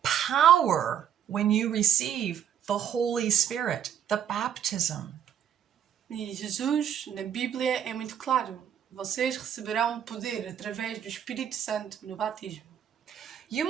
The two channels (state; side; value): quieter; left; 9.3 dB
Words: power when you receive the Holy Spirit, the baptism. E Jesus, na Bíblia, é muito claro. vocês receberão poder através do Espírito Santo no batismo. You